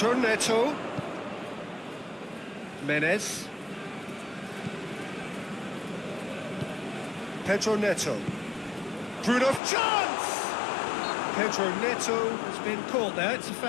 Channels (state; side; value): drops out; right; at 9.6 s